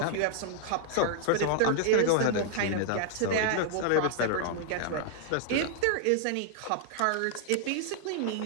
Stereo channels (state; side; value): different; both; correlation 0.00